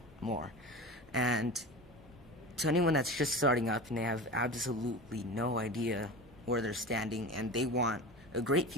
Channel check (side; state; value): both; normal; correlation 0.31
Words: more. And to anyone that's just starting up and they have absolutely no idea where they're standing and they want a great